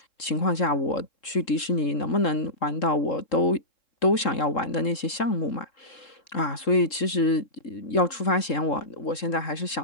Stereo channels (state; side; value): late; right; 3.7 ms